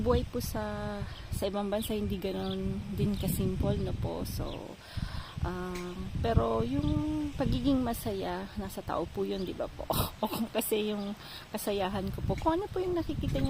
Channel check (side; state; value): both; identical; correlation 1.00